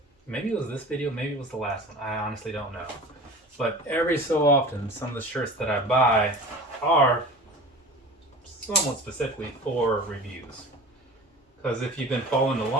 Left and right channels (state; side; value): normal; both; correlation 0.37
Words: maybe it was this video, maybe it was the last one, I honestly don't know. But every so often, some of the shirts that I buy are somewhat specifically for reviews. Because if you've been following